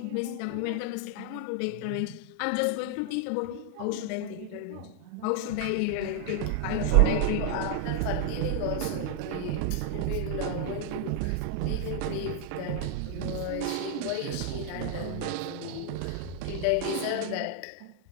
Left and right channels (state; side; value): different; both; correlation 0.00